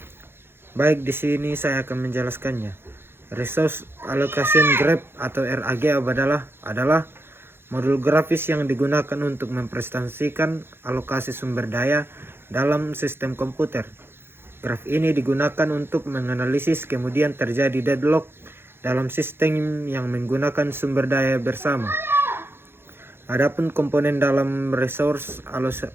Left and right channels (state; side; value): late; left; 0.11 ms